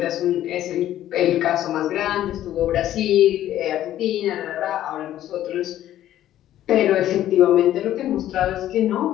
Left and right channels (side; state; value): right; quieter; 12.6 dB